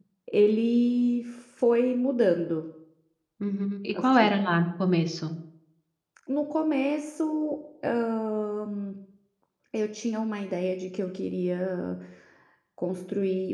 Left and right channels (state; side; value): identical; both; correlation 1.00